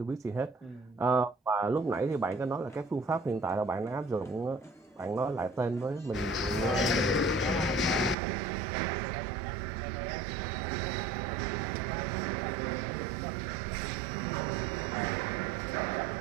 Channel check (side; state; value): left; drops out; at 8.2 s